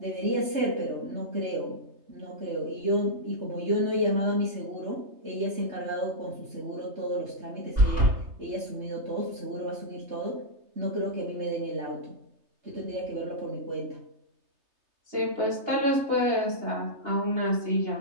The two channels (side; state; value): left; late; 3.3 ms